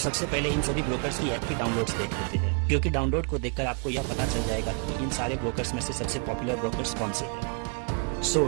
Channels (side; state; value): left; quieter; 39.3 dB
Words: पहले इन सभी ब्रोकर्स की ऐप की डाउनलोड्स देख लेते हैं, क्योंकि डाउनलोड को देखकर आपको यह पता चल जाएगा कि इन सारे ब्रोकर्स में से सबसे पॉपुलर ब्रोकर्स कौन से हैं।